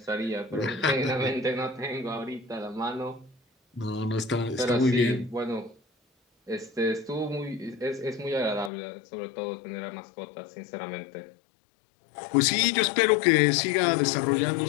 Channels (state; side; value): drops out; right; at 8.7 s